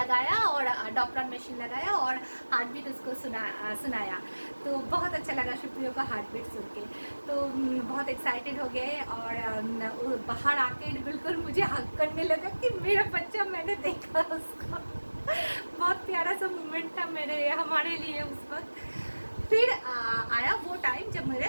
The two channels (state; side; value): inverted; both; correlation -1.00